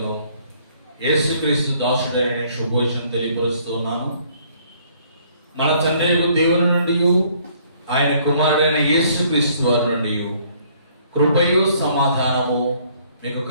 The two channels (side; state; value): both; inverted; correlation -0.62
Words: యేసుక్రీస్తు దాసుడైన శుభోచనం తెలియపరుస్తున్నాను. మన తండ్రి దేవుని నుండి ఆయన కుమారుడైన యేసుక్రీస్తు వారి నుండి కృపయు సమాధానము మీకు